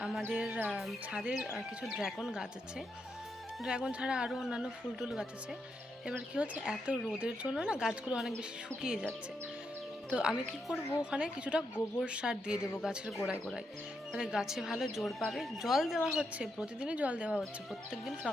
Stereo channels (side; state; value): both; normal; correlation 0.82